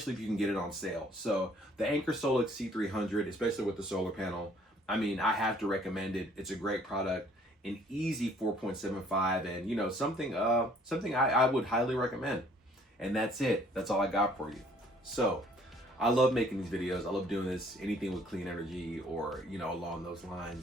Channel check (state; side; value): normal; both; correlation 0.59